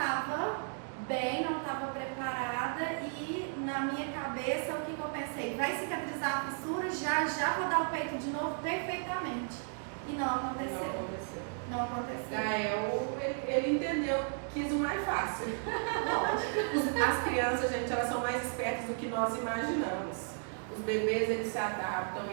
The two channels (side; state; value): left; silent; 55 dB below the other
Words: bem, não estava preparada e na minha cabeça o que eu pensei? Vai cicatrizar a fissura, já vou dar o peito de novo perfeitamente. E não aconteceu. Não aconteceu. Gael, ele entendeu, quis o mais fácil. As crianças, gente, elas são mais espertas do que nós imaginamos. Os bebês, eles se adaptam,